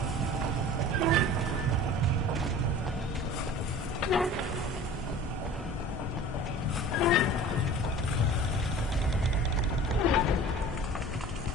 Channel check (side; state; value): both; normal; correlation 0.42